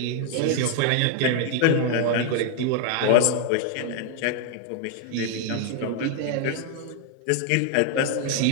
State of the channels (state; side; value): different; both; correlation 0.00